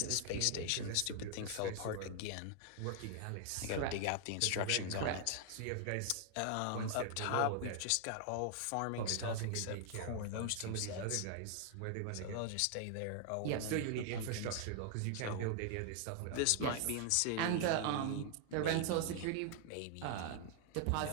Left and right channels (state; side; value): different; both; correlation 0.00